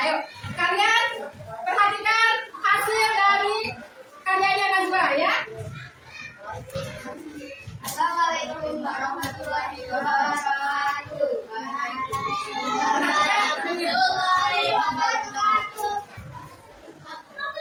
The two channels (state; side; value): identical; both; correlation 1.00